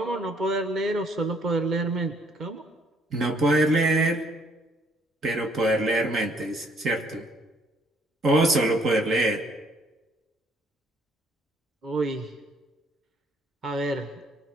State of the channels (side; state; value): both; normal; correlation 0.65